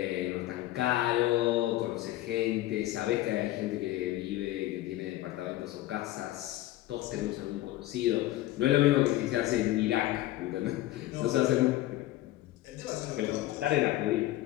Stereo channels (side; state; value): right; quieter; 15.8 dB